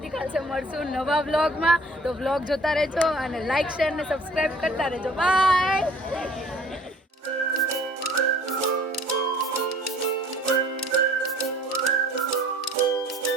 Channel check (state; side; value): normal; both; correlation 0.53